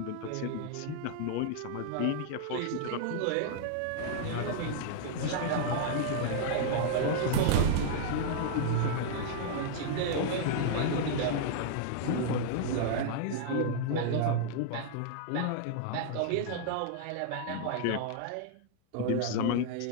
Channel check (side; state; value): both; different; correlation -0.01